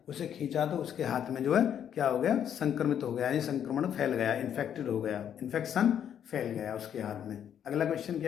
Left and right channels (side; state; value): right; quieter; 9.2 dB